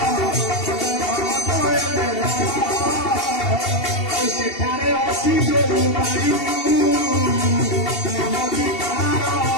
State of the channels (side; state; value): right; late; 2.7 ms